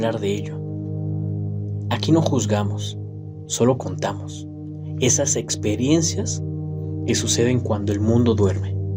de ello. Aquí no juzgamos, solo contamos esas experiencias que suceden cuando el mundo duerme.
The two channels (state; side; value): identical; both; correlation 1.00